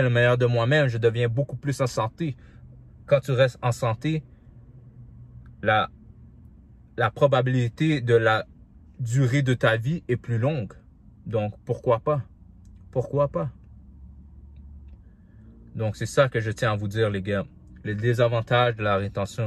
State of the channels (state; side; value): identical; both; correlation 1.00